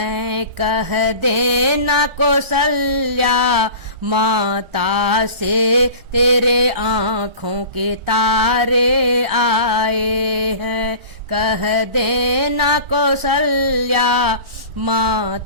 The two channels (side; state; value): left; late; 1.4 ms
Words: कह देना कौशल्या माता से तेरे आँखों के तारे आए हैं। कह देना कौशल्या